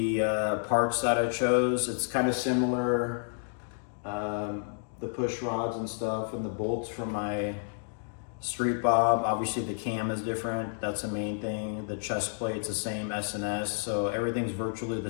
parts that I chose. It's kind of similar, the push rods and stuff and the bolts from my Street Bob. Obviously the cam is different, that's the main thing. The chest plate's the same, S&S, so everything's virtually the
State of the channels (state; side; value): silent; right; digital silence